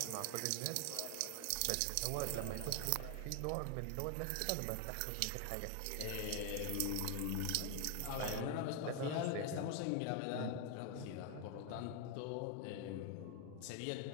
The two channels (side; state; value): both; different; correlation 0.01